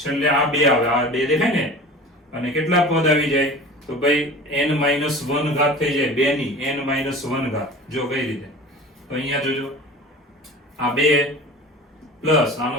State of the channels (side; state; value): both; normal; correlation 0.38